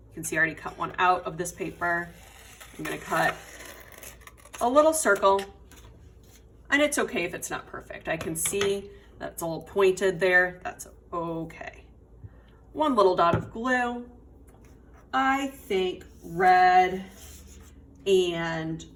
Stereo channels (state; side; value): identical; both; correlation 1.00